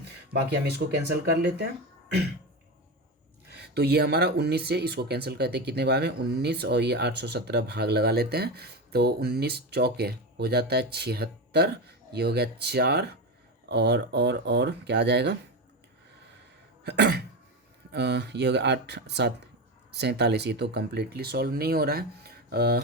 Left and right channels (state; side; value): normal; both; correlation 0.18